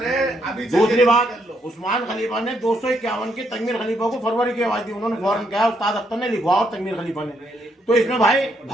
दूसरी बात, उस्मान खलीफा ने 251 की तनवीर खलीफा को फरवरी की आवाज दी। उन्होंने फौरन कहा, उस्ताद अख्तर ने लिखवा और तनवीर खलीफा ने। तो इसमें भाई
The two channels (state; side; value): normal; both; correlation 0.75